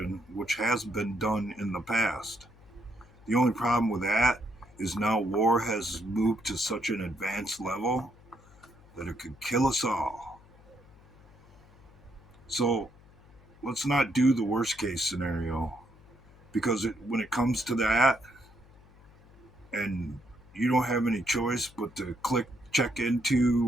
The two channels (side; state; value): left; noise; hum, 25 dB below the sound